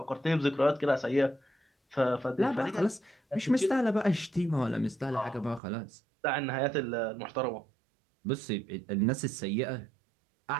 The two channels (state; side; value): drops out; left; at 5.6 s